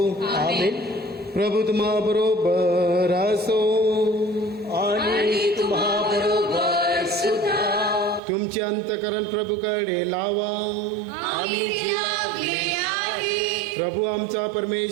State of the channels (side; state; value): left; drops out; at 8.2 s